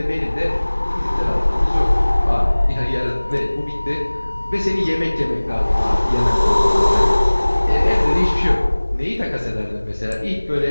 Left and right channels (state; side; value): inverted; both; correlation -1.00